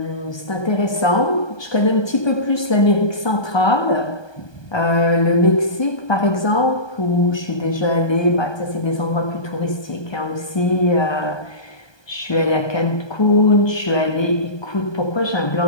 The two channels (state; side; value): late; right; 1.2 ms